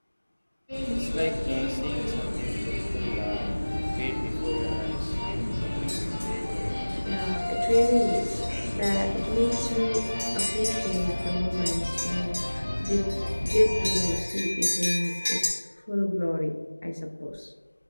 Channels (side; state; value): both; inverted; correlation -1.00